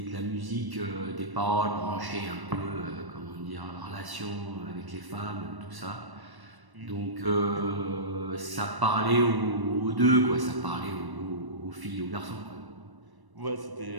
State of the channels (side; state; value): left; late; 1.1 ms